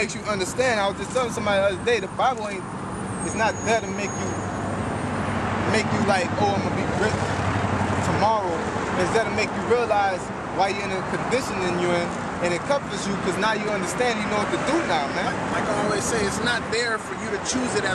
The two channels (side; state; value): both; identical; correlation 1.00